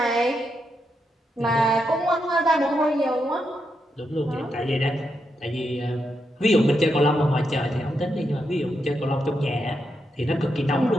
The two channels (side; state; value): both; normal; correlation 0.83